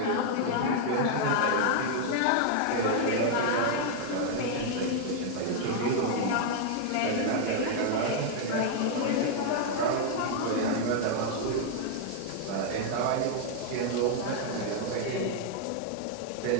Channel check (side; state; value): both; different; correlation 0.00